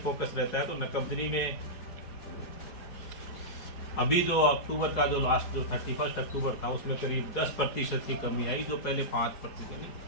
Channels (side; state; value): right; late; 4.7 ms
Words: फोकस रहता है, तो नकबजनी में अभी जो अक्टूबर का जो लास्ट जो 31 अक्टूबर था उसमें करीब 10% की कमी आई, जो पहले 5%,